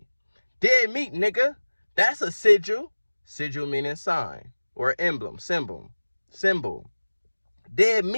Dead meat, nigga. That's a sigil. Sigil meaning sign or emblem, symbol. Dead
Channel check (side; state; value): both; inverted; correlation -1.00